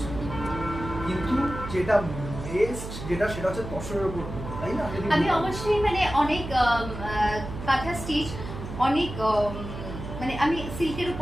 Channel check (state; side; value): noise; right; hum, 9 dB below the sound